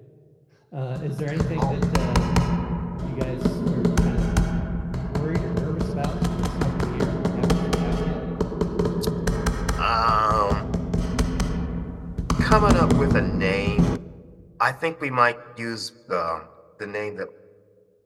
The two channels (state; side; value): identical; both; correlation 1.00